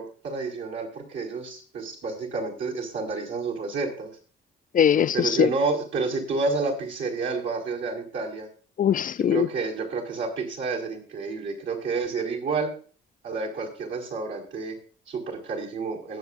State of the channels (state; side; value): normal; both; correlation 0.37